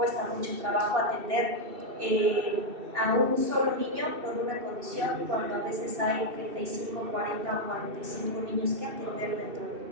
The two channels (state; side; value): late; left; 2.7 ms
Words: mucho trabajo atender a un solo niño con una condición, cuando a veces hay 35, 40 o 45 niños que atender dentro